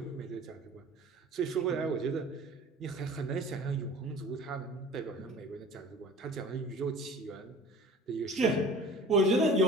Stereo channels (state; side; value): normal; both; correlation 0.43